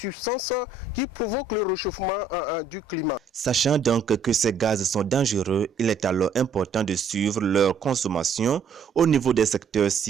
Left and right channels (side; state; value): left; quieter; 4.6 dB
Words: qui provoquent le réchauffement du climat. Sachant donc que ces gaz sont dangereux, il est alors important de suivre leur consommation au niveau des secteurs